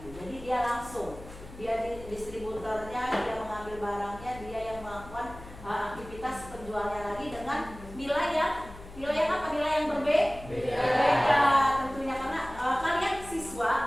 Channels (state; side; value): noise; left; hum, 16 dB below the sound